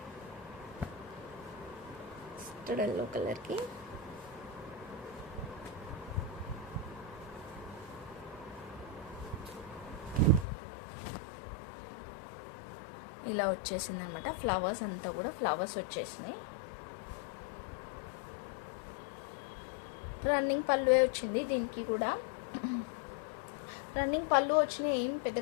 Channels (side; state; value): right; drops out; at 10.5 s